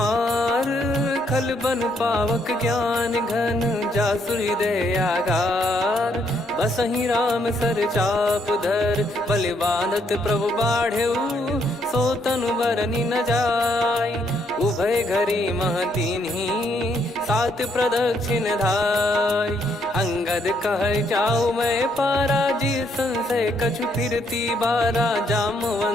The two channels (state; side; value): normal; both; correlation 0.72